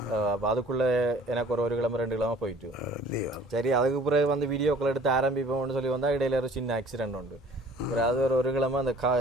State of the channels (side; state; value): both; normal; correlation 0.52